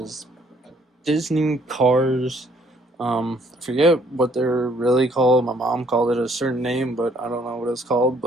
Disney cars. I forget what they're really called. My mom called it a certain name, but I don't know what it's called,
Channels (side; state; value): both; normal; correlation 0.64